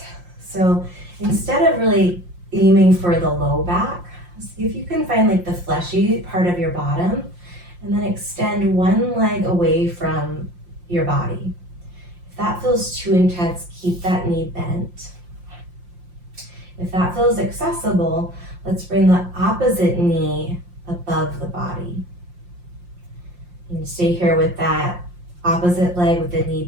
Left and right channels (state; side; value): late; left; 5.7 ms